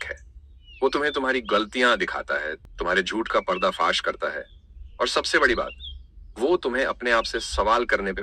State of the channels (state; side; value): identical; both; correlation 1.00